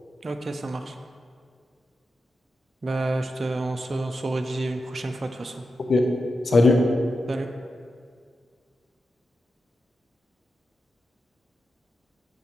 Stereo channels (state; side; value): normal; both; correlation 0.89